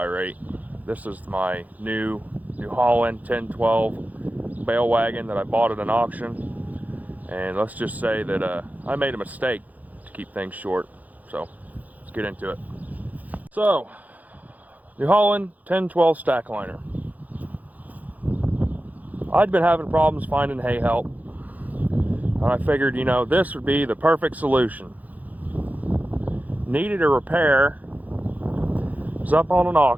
This is my New Holland 1012 Bale wagon that I bought at an auction. And let's just say that I made a mistake to keep things short. So let's get into it. So, New Holland 1012 stack liner. I'd been having problems finding hay help. And I figured, you know, this would be the perfect solution. Needed a repair. Was up on an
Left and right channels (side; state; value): left; late; 0.079 ms